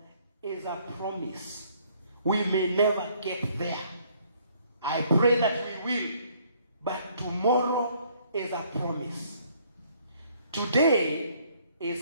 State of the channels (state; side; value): inverted; both; correlation -0.63